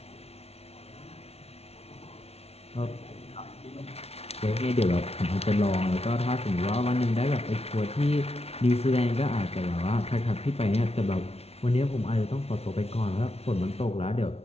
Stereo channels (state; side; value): late; right; 0.30 ms